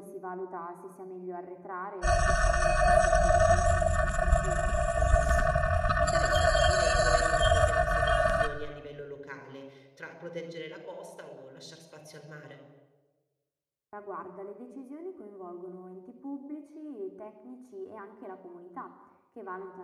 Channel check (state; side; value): identical; both; correlation 1.00